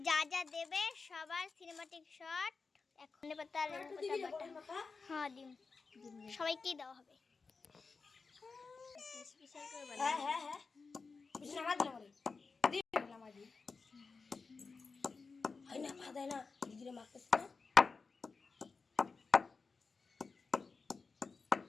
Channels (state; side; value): quieter; right; 4.5 dB